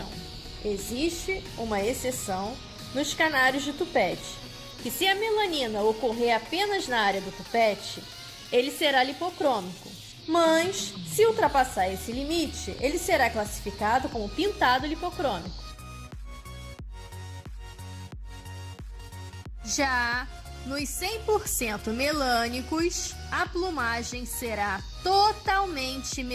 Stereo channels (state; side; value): identical; both; correlation 1.00